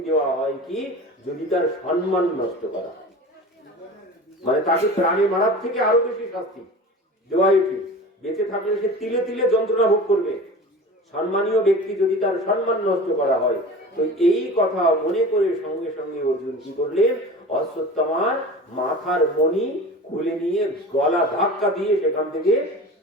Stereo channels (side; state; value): both; normal; correlation 0.36